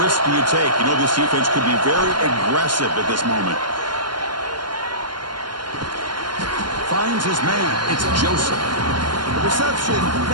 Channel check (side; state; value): left; late; 0.71 ms